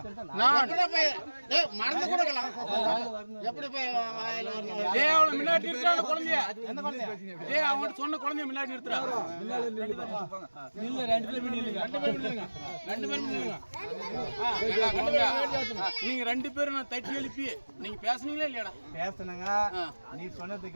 நான் மறந்து கொடுக்கலாம் எப்படி போய் வாயில வரணும்? டேய் அவளை முன்னாடி நிறுத்துறான குழந்தைய. டேய் அவன் சொன்ன குழந்தைய முன்னாடி நிறுத்துறா. இல்ல ரெண்டு பேரும் நில்லுங்க. ஏடா குழந்தை, நீங்க 2 பேரும் நான் தட்டி எழுப்பி நீங்க பேசுனீங்களா இல்லையாடா? பேசுனங்க. நீ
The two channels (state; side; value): inverted; both; correlation -1.00